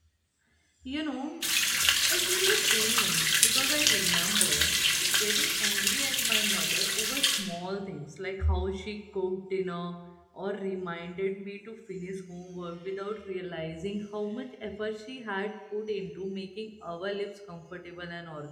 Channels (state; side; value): identical; both; correlation 1.00